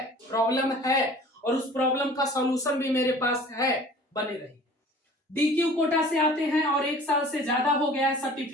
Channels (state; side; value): normal; both; correlation 0.46